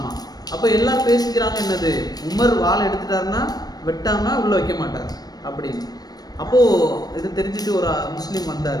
அப்ப எல்லாம் பேசிக்கிறாங்க, என்னது, உமர் வாழை எடுத்துட்டாருன்னா வெட்டாம உள்ள வைக்க மாட்டார் அப்படின்னு. அப்போ இது தெரிஞ்சுட்டு ஒரு முஸ்லீம்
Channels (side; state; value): right; late; 0.19 ms